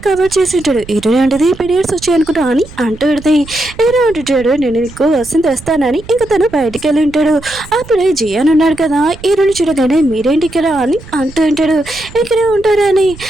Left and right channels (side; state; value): right; noise; rumble, 18 dB below the sound